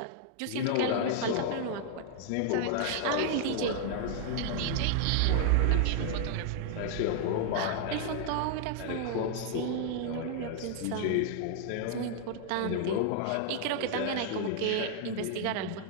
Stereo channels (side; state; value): both; different; correlation 0.00